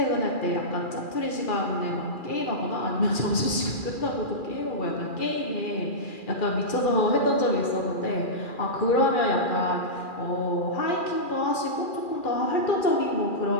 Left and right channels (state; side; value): late; right; 2.4 ms